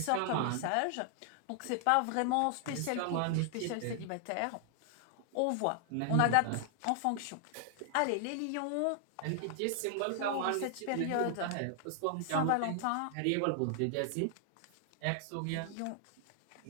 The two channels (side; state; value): both; different; correlation 0.00